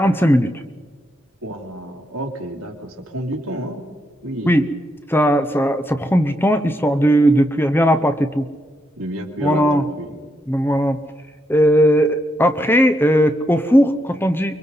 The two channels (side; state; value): both; normal; correlation 0.80